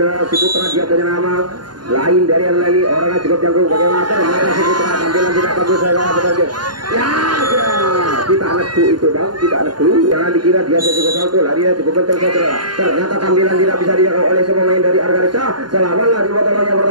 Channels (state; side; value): late; left; 0.71 ms